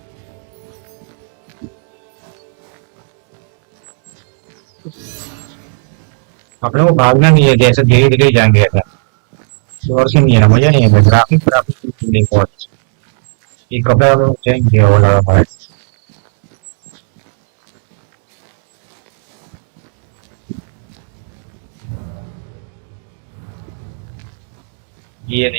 अपने को भागना नहीं है, जैसे धीरे धीरे जाएंगे ऐसा। शोर से नहीं है ना, मजा नहीं है। ग्राफिक ग्राफिक नहीं बहुत। ये कपड़ा चेंज हो रहा है। ये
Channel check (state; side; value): silent; left; digital silence